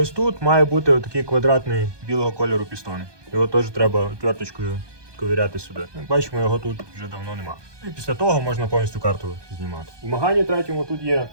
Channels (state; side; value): late; left; 1.2 ms